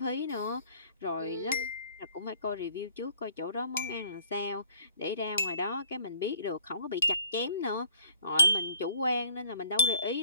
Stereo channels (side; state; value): both; inverted; correlation -0.56